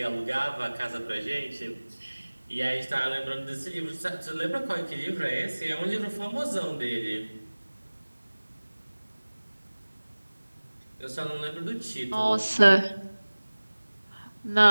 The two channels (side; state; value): both; inverted; correlation -1.00